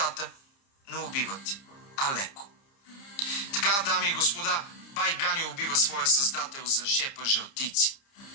но убиват Алеко. Така, дами и господа, бай Ганьо убива своя създател за шепа жълтици.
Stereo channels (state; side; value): late; right; 30 ms